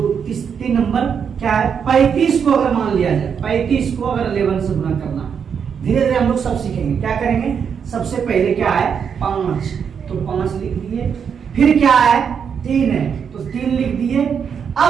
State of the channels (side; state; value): left; quieter; 7.1 dB